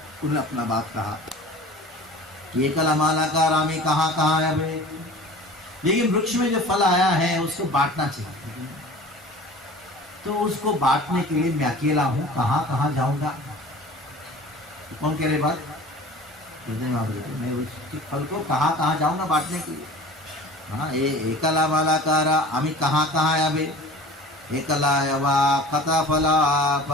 उन्होंने अपना बात कहा, ये कलामाला का रामी कहाँ कहाँ है भाई। लेकिन वृक्ष में जो फल आया है उसको बांटना चाहिए। तो उसको बांटने के लिए मैं अकेला हूं, कहाँ कहाँ जाऊंगा? तो कौन कह रहे बात? मैं उसके फल को कहाँ कहाँ जाऊंगा बांटने के लिए? हाँ, ये एकला मालाकारा आमी कहाँ कहाँ आवे, एकला यवा कथा फला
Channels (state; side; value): normal; both; correlation 0.42